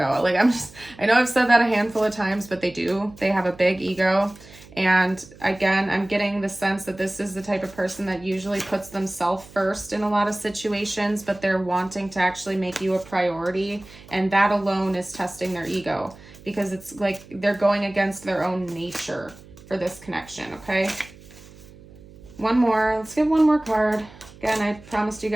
Like, I know I've said that a handful of times, but they do. They have a big ego. And again, I'm getting the sense that this is the type of person that usually puts themselves first in a lot of situations, but they're wanting to actually make you a priority. And that alone is testing their ego, because it's like they're going against their own nature for this connection, okay? One more. Let's get one more card. Again, I promised you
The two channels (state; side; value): noise; right; hum, 21 dB below the sound